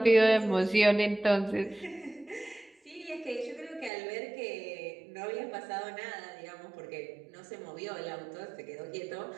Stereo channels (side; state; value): left; drops out; at 3.9 s